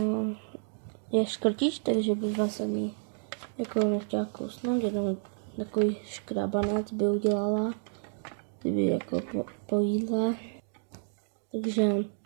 Je škrtič, takže bych vás ani jako nechtěla kousnout, jenom takový škrabanec by udělala, kdyby jako po jídle. Takže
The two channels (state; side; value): silent; left; digital silence